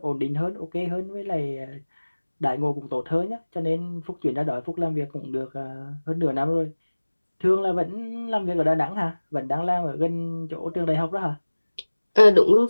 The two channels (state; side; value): inverted; both; correlation -1.00